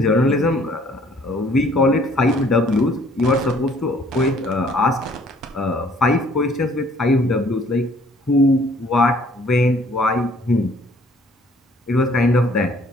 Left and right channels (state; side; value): normal; both; correlation 0.59